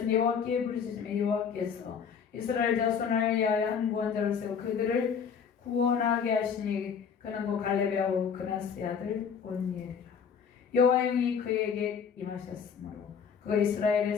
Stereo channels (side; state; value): right; quieter; 6.8 dB